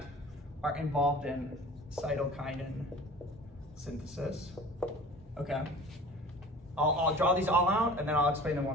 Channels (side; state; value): both; normal; correlation 0.42